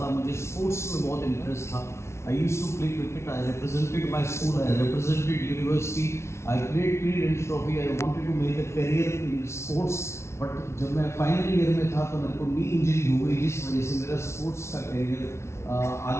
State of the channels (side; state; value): right; late; 0.13 ms